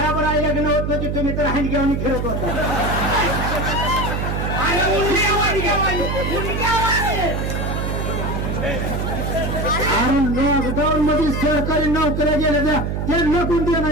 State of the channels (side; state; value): right; noise; hum, 1 dB below the sound